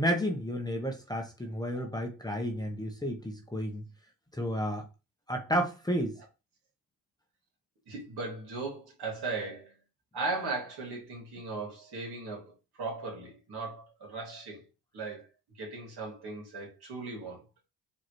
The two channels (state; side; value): normal; both; correlation 0.44